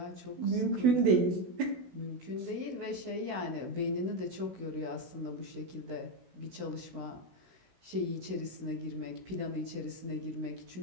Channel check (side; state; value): left; late; 16 ms